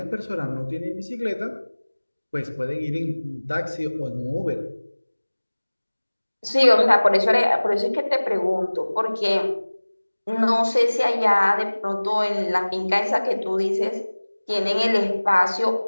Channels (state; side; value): inverted; both; correlation -1.00